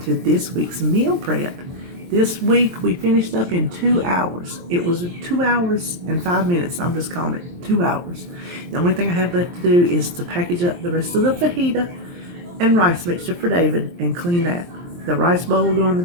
to this week's meal prep. This week we finished up in 2 hours. It was 2 hours and 5 minutes. I'm just calling it 2 hours. The only thing I have left to do is to package up the rest of the fajita and rice mixture for David and clean that. The rice bowl will go in the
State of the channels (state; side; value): late; left; 23 ms